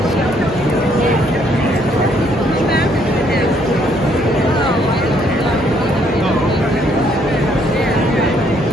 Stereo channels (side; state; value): right; noise; hum, 18 dB below the sound